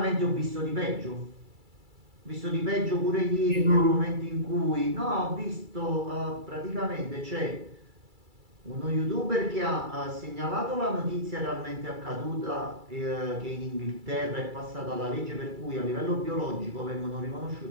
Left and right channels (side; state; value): left; late; 2.3 ms